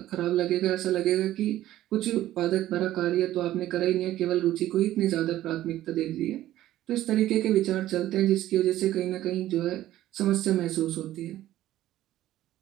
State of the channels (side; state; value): left; quieter; 14.0 dB